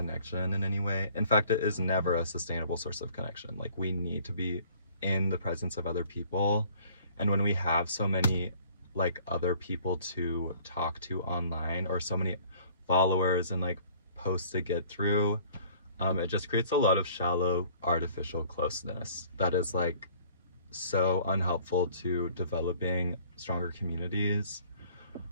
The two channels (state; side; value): inverted; both; correlation -0.54